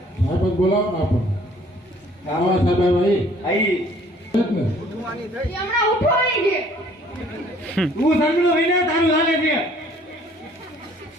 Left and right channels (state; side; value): normal; both; correlation 0.57